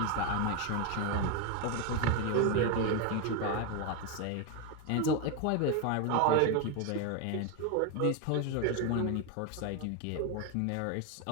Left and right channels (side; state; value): both; different; correlation 0.02